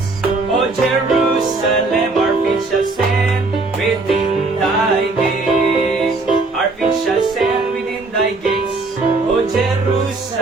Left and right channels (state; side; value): quieter; left; 3.5 dB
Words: O Jerusalem. Our feet shall stand within thy gates. Our feet shall stand within thy gates, O